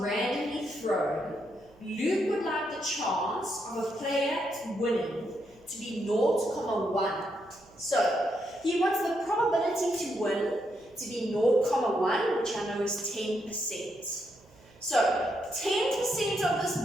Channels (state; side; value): noise; right; hum, 27 dB below the sound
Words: thrown, Luke would like the chance of a player winning to be 0.1. So he wants the probability to win to be 0.1, which I know is 10%. So 10% of this